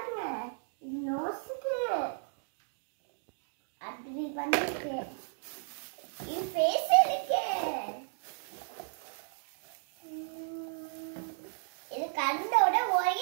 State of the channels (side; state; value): left; silent; digital silence